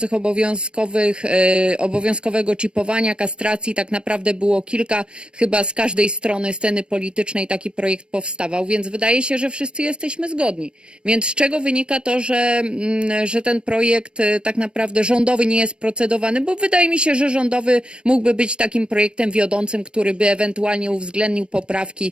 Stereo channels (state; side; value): late; left; 0.056 ms